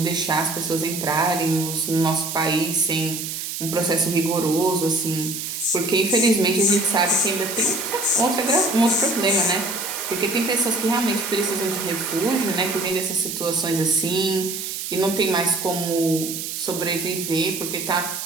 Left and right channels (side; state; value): right; noise; hiss, 5 dB below the sound